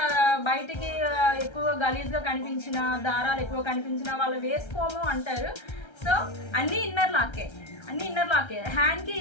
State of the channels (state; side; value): late; right; 1.3 ms